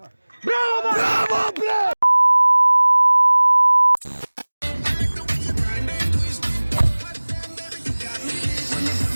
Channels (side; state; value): both; inverted; correlation -1.00